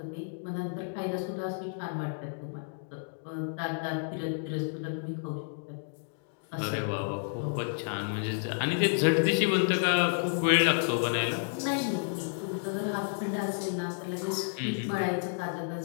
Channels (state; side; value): silent; right; digital silence